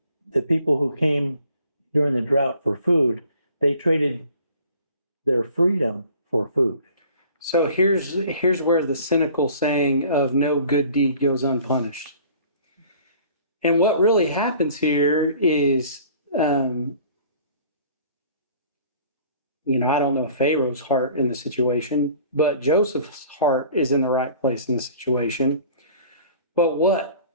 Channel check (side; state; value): both; inverted; correlation -0.50